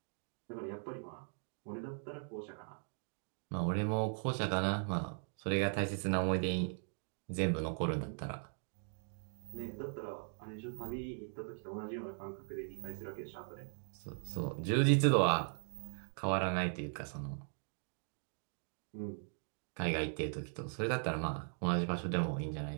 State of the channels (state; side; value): silent; left; 52 dB below the other